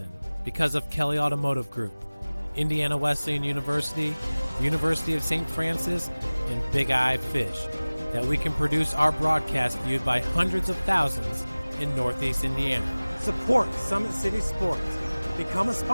because of Kelly Automotive Group, Indiana Wesleyan University, University of St. Francis, and Big Eye Fish, that we can produce our broadcast viewed by hundreds of thousands in Northeast Indiana. Support Summit City Sports. Become a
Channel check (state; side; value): inverted; both; correlation -1.00